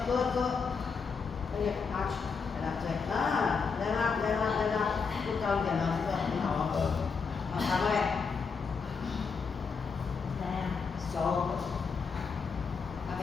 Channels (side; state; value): right; quieter; 5.4 dB